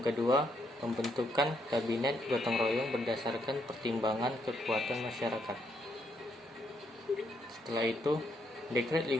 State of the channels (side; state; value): both; normal; correlation 0.75